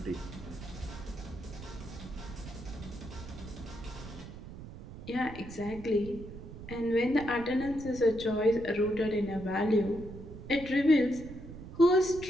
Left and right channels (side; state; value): right; noise; rumble, 13 dB below the sound